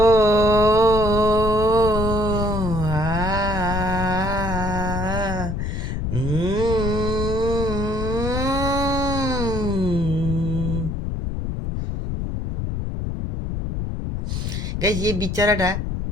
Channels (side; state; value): left; noise; rumble, 3 dB below the sound